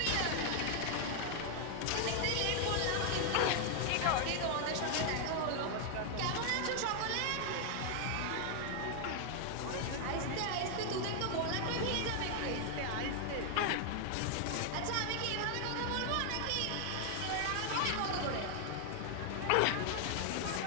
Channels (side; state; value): both; different; correlation 0.00